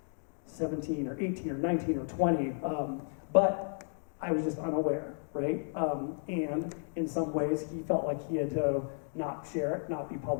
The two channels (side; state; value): right; silent; digital silence